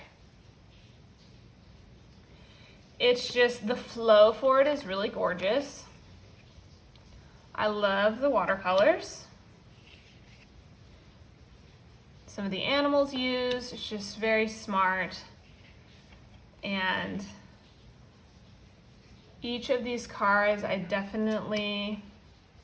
It's just, the flow for it is really gorgeous. I love the watercolors. Some of the animals used, it's just very smart. And each of these cards, I definitely,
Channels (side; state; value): both; identical; correlation 1.00